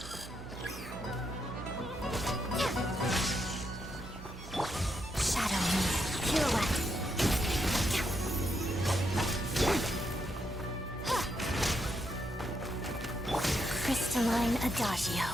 Shadow me. Pirouette. Crystalline Adagio.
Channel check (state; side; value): noise; right; hum, 13 dB below the sound